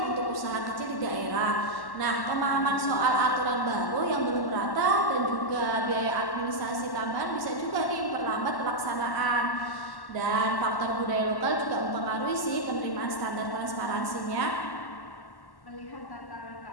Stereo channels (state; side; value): late; right; 1.1 ms